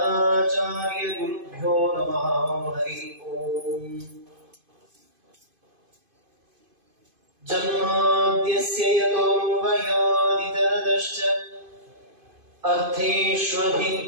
ಗುರುಭ್ಯೋ ನಮಃ. ಹರಿ ಓಂ. ಜನ್ಮಾದ್ಯಸ್ಯ ಯತೋನ್ವಯಾದಿತರತಶ್ಚ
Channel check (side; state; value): left; late; 2.5 ms